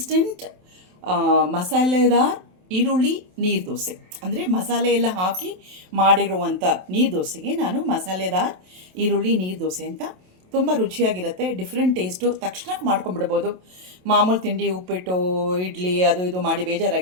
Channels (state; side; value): late; left; 27 ms